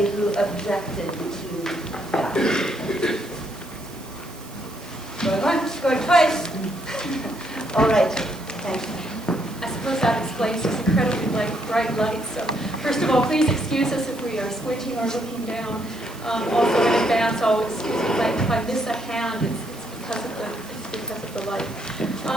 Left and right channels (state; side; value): noise; right; hiss, 20 dB below the sound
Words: who objected to that. Going once, going twice. All right, thanks. I suppose that explains this incredibly bright light. So first of all, please excuse us if we are squinting or looking down. Also in advance, I'll excuse me if I miss a hand. It's because of the light.